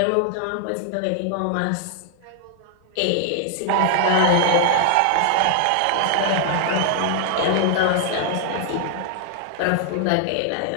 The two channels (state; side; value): different; both; correlation 0.00